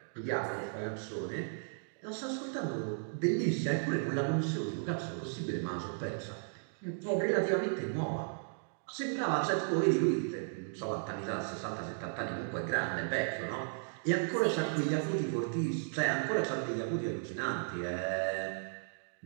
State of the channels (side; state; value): left; silent; digital silence